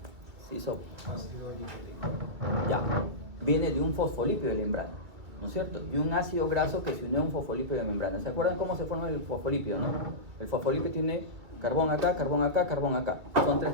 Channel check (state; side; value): late; left; 2.4 ms